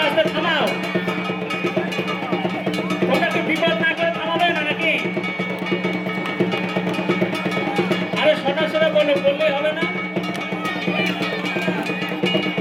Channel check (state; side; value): identical; both; correlation 1.00